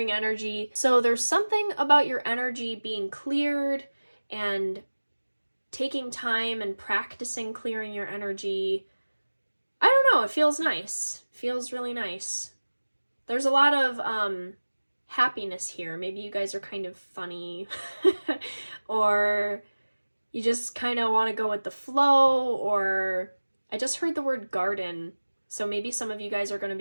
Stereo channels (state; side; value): inverted; both; correlation -1.00